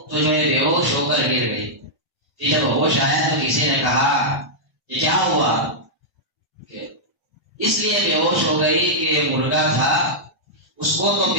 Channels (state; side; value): late; left; 1.1 ms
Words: تو جو ہے بے ہوش ہو کر گر گئی۔ پھر جب ہوش آیا تو کسی نے کہا کہ کیا ہوا؟ کہ اس لیے بے ہوش ہو گئی کہ مرغا تھا، اس کو تو